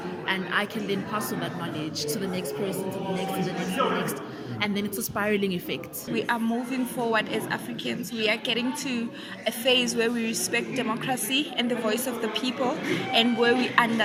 And I can then pass on that knowledge to the next person, to the next, to the next, to the next. And then it's a spiraling effect. We are moving forward as Africans. We are getting to a phase where we respect democracy and the voice of the people, and where we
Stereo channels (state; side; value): identical; both; correlation 1.00